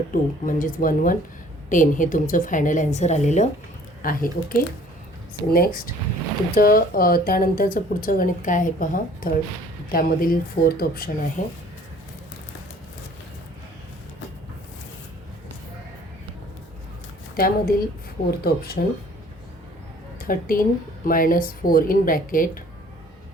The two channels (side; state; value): both; normal; correlation 0.54